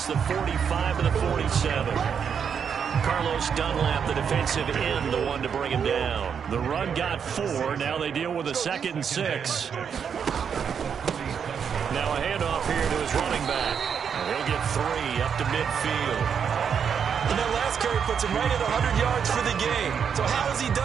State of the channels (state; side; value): quieter; left; 7.2 dB